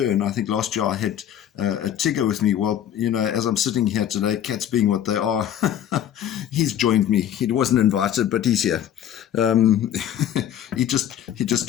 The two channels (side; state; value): right; quieter; 10.3 dB